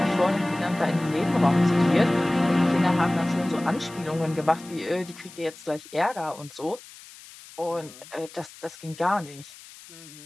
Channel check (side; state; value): left; noise; hiss, 19 dB below the sound